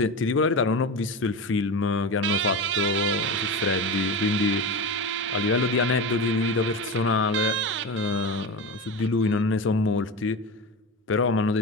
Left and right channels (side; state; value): both; normal; correlation 0.24